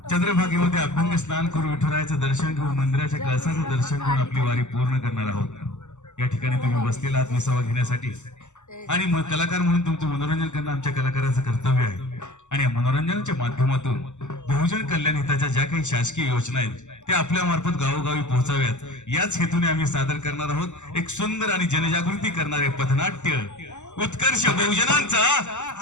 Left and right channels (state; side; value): late; right; 0.84 ms